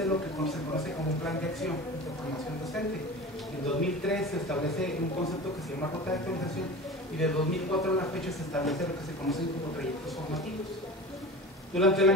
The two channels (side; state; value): both; normal; correlation 0.34